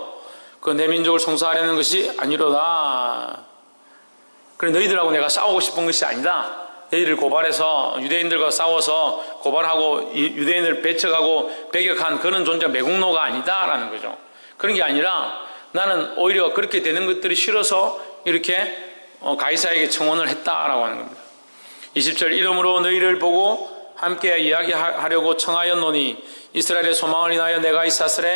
그 내 민족을 송사하려는 것이 아니로다. 그래, 너희들하고 내가 싸우고 싶은 것이 아니다. 너희를 고발해서 유대인들과 싸워서 고발하고 유대인을 배척하고 배격한 그런 존재가 매국노가 아니다라는 거죠. 그런 게 아니라 나는 오히려 그렇게 되는 것들이 싫어서 이렇게 가이사에게 청혼을 했다라고 하는 겁니다. 20절 이름으로 너희를 보고 함께 이야기하려고 청하였노니 이스라엘의 소망을 인하여 내가 이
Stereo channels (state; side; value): inverted; both; correlation -1.00